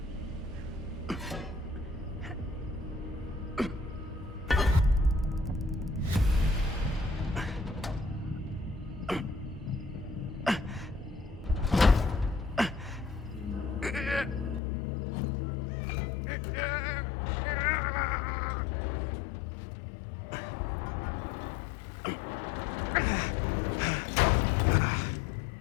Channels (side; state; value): right; drops out; at 14.6 s